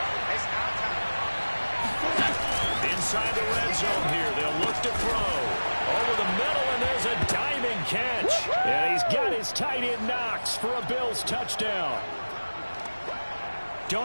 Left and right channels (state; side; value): inverted; both; correlation -1.00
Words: Inside the red zone here, they'll look to throw. Over the middle, and there's a diving catch. And he's got his tight end Knox for a Bills touchdown.